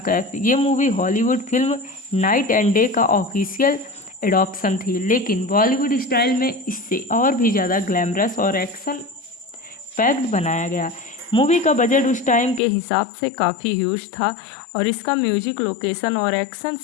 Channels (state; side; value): drops out; right; at 12.6 s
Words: कैफ। ये movie Hollywood film night and day का ऑफिशियल एडॉप्शन थी, लेकिन बॉलीवुड स्टाइल में इससे और भी ज़्यादा ग्लैमरस और एक्शन पैक्ड बनाया गया। मूवी का बजट उस टाइम के हिसाब से काफ़ी ह्यूज था और इसका म्यूजिक, लोकेशन और एक्शन